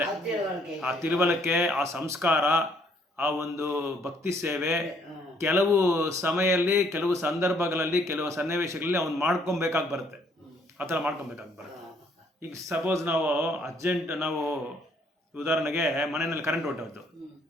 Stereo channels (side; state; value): both; normal; correlation 0.65